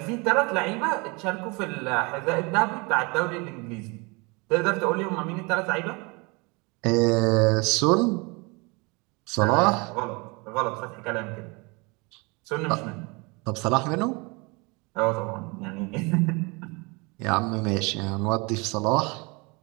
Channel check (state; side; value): quieter; left; 28.2 dB